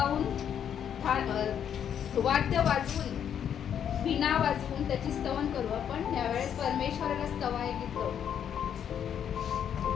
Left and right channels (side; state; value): right; quieter; 8.8 dB